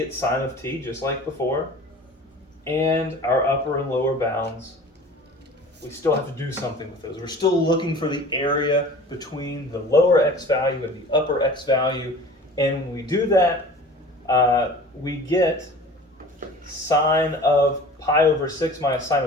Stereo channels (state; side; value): normal; both; correlation 0.42